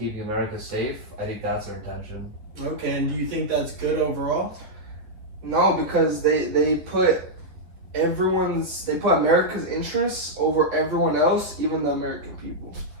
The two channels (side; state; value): left; late; 11 ms